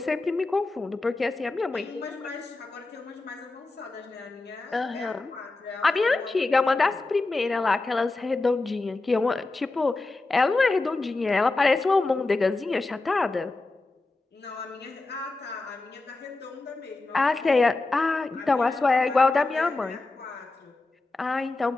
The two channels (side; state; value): right; quieter; 3.3 dB